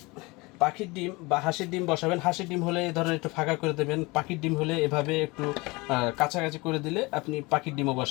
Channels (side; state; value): right; quieter; 24.4 dB